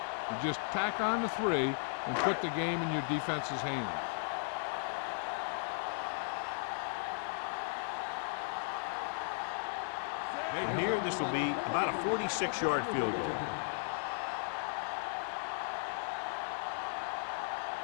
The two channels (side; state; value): right; silent; digital silence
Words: just tack on the 3 and put the game in your defense's hands. And here, this will be about a 46-yard field goal.